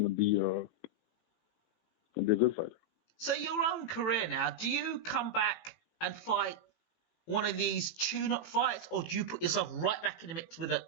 be a good fighter. So your own career now, do you come back and fight one of these tune-up fights, or do you put yourself right back in the mix with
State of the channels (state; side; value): late; right; 18 ms